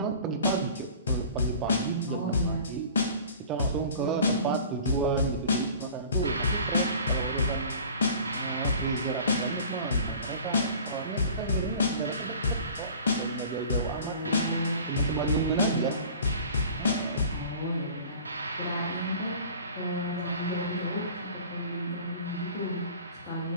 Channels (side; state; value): both; inverted; correlation -0.44